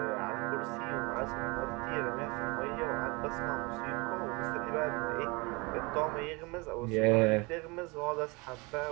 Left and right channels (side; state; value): left; quieter; 26.9 dB